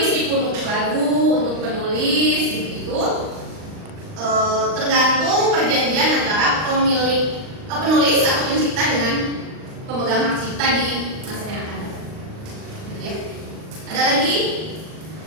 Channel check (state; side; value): late; left; 39 ms